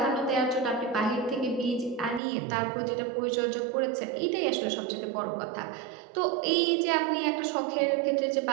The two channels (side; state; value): left; drops out; at 2.2 s